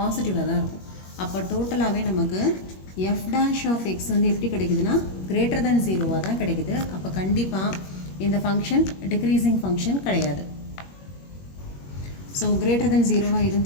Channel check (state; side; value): late; right; 21 ms